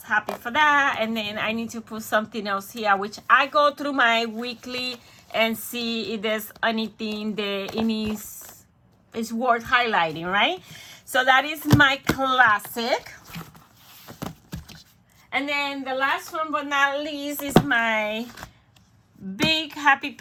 happy for that. And then I need to put something else here, which I go through my weekly and see if there's anything that is worth highlighting, right? So that is my classic. And then the last one but not least is my big happy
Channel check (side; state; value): both; identical; correlation 1.00